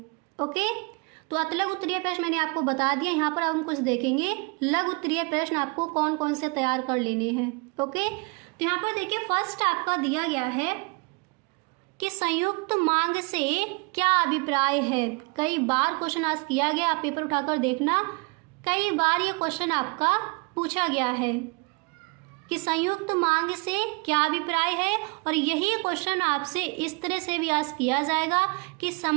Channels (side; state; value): left; quieter; 29.7 dB